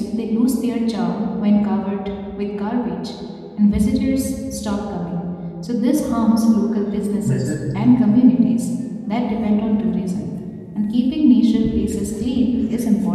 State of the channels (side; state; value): both; identical; correlation 1.00